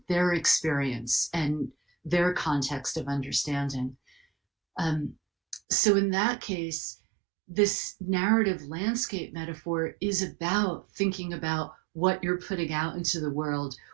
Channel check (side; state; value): left; drops out; at 5.6 s